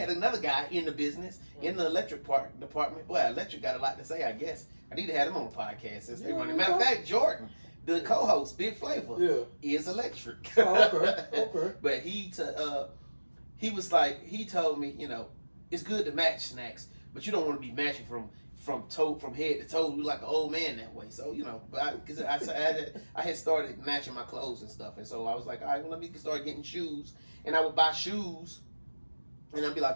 another guy in the business, in the electric department. Boy, electric got a lot to say, I guess. I need to have him on the podcast since they running. Matter of fact, Jordan, the co-host, Big Flavor, is electric. Okay. But he was like, he told me, it's good to match Snacks, but you don't want to be matching from head to toe. You like an old man that way. So, but because I had started matching my clothes and stuff. And so I was like, all right, well, let me start getting shoes. And I would buy shoes. And I'd be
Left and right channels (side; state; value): both; inverted; correlation -1.00